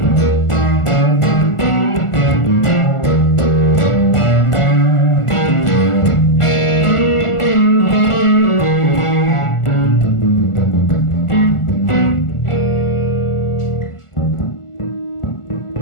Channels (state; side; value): late; right; 1.4 ms